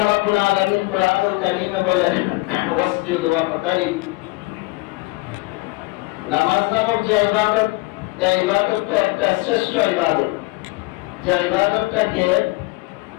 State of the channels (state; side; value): quieter; right; 22.9 dB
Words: রাব্বুল আলামিন কোরআনুল কারীমে বলেন, ওয়াসজুদ ওয়াকতারিব। নামাজ নামক যে ইবাদত, এই ইবাদতটা একটা শ্রেষ্ঠ ইবাদত, যে ইবাদতটাকে